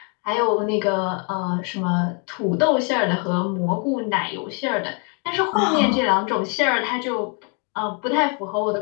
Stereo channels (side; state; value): right; quieter; 37.4 dB